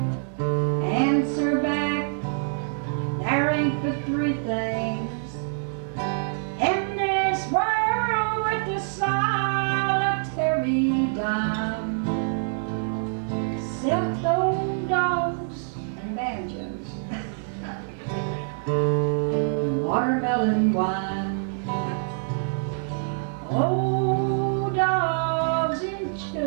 answer back. There ain't but three things in this world with the solitary dime, except old dogs and banjos, and watermelon wine. Old dogs and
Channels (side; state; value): left; silent; 60 dB below the other